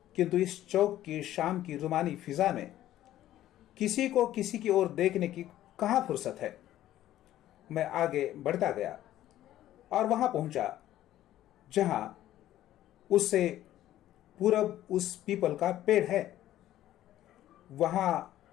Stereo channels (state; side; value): quieter; right; 13.4 dB